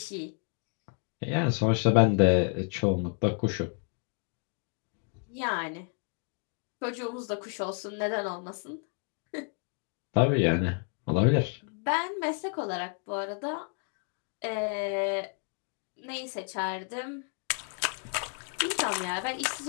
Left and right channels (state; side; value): quieter; right; 38.3 dB